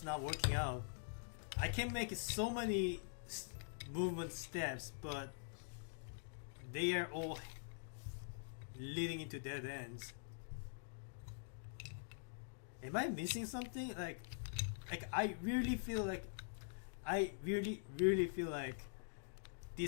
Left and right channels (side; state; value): right; silent; digital silence